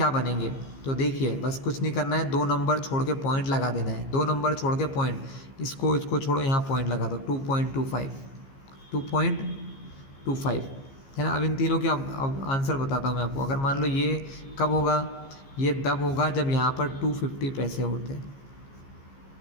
बनेंगे। तो देखिए बस कुछ नहीं करना है, 2 नंबर छोड़ के पॉइंट लगा देना है। 2 नंबर छोड़ के पॉइंट, इसको छोड़ो, यहाँ पॉइंट लगा दो। 2.25, 2.25, है ना। अब इन तीनों के अब आंसर बताता हूँ मैं आपको। अगर मान लो ये कब होगा, ये तब होगा जब यहाँ पर 250 पैसे होते हैं,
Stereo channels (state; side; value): late; right; 15 ms